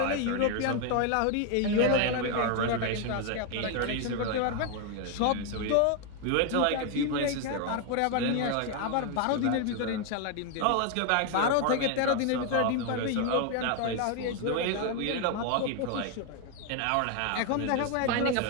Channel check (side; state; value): both; different; correlation 0.01